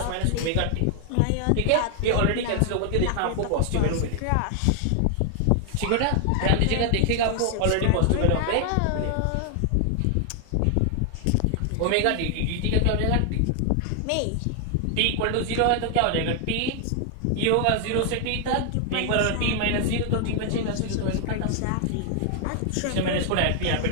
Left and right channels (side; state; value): both; different; correlation 0.00